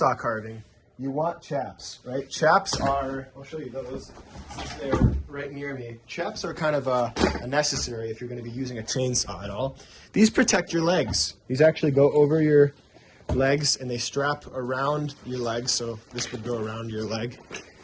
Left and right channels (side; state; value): both; identical; correlation 1.00